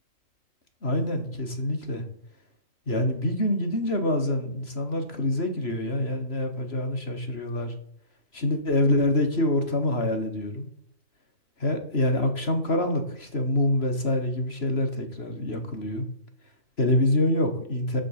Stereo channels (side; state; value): right; late; 3.0 ms